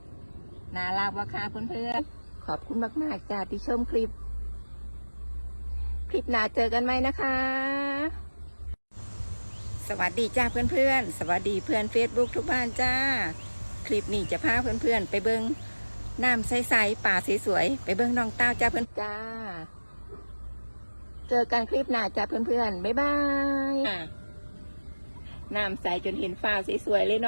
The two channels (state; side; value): inverted; both; correlation -1.00